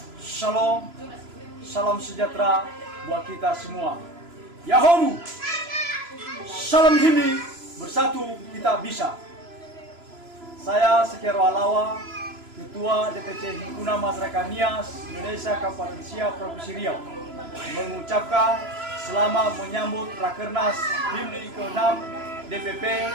Shalom, salam sejahtera buat kita semua. Yahoo! Salam Himni, bersatu kita bisa. Saya Sekero Alawa, Ketua DPC Himpunan Masyarakat Nias Indonesia Kabupaten Siak Provinsi Riau, mengucapkan selamat menyambut Rakernas Himni ke-6 DPP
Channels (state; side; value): late; left; 3.0 ms